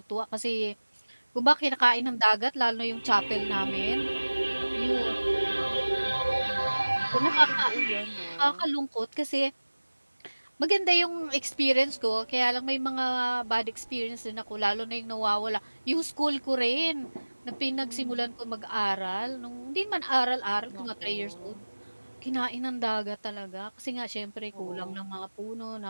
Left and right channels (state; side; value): inverted; both; correlation -1.00